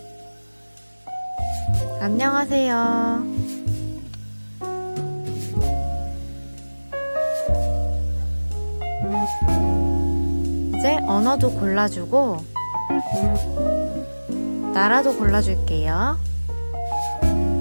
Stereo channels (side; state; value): both; inverted; correlation -1.00